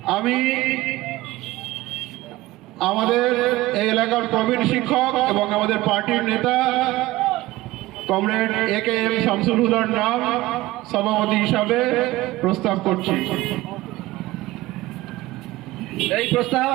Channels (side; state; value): left; quieter; 17.9 dB